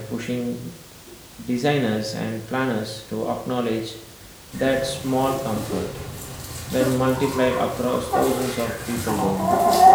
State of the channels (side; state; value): both; identical; correlation 1.00